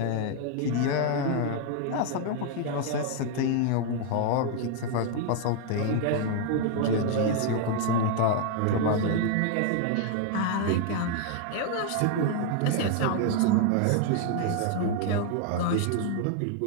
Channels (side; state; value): both; different; correlation 0.00